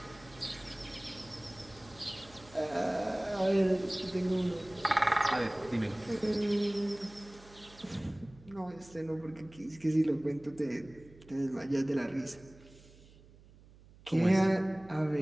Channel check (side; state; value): right; noise; hum, 23 dB below the sound